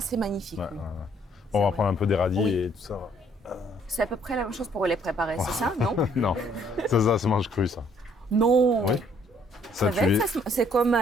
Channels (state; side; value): normal; both; correlation 0.64